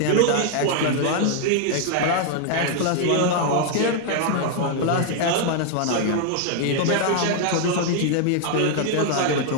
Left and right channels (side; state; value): both; different; correlation 0.00